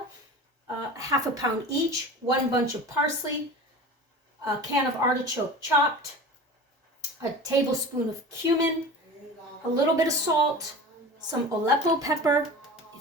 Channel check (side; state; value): both; normal; correlation 0.35